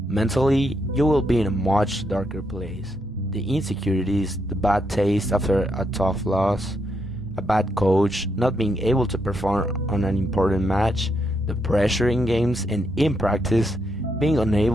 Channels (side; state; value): both; normal; correlation 0.79